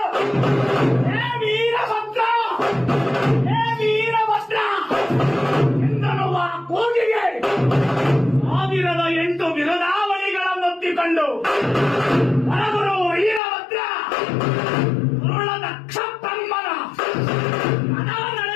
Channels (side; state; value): right; drops out; at 13.4 s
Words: ಹೇ ವೀರಭದ್ರ, ಹೇ ವೀರಭದ್ರ ಎಂದನುವ ಕೂಗಿಗೆ 1008 ಬಿರುದಾವಳಿಗಳನ್ನೊತ್ತಿಕೊಂಡು ಹೊರಗುರು ವೀರಭದ್ರ ದುರುಳದಕ್ಷ ಬ್ರಹ್ಮನ ಮನ